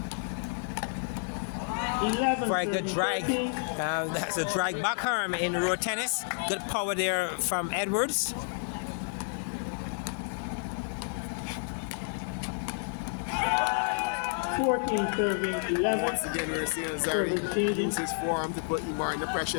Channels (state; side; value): silent; right; 58 dB below the other